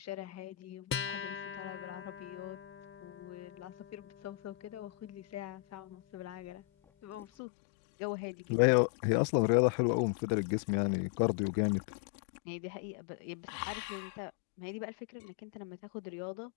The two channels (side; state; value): right; drops out; at 7.2 s